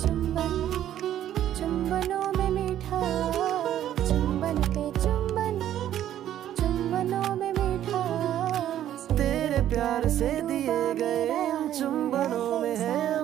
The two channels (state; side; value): quieter; left; 11.6 dB